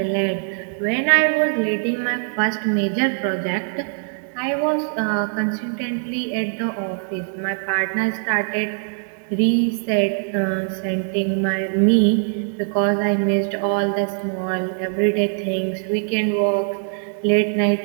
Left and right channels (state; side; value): silent; left; digital silence